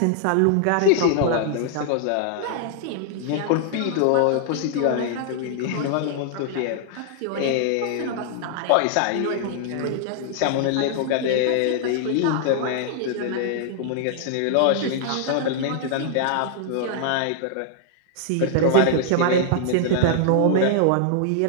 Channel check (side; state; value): both; different; correlation -0.01